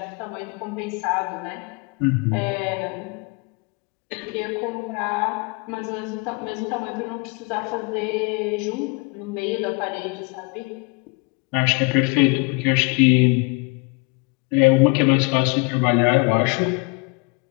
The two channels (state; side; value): quieter; right; 30.1 dB